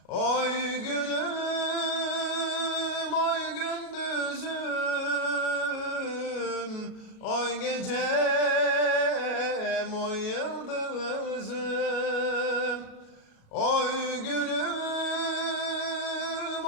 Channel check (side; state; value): right; late; 37 ms